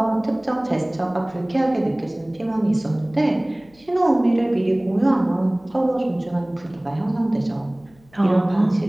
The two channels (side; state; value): left; noise; hum, 30 dB below the sound